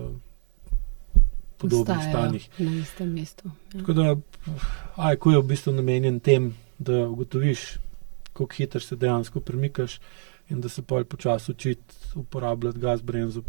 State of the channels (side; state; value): left; silent; digital silence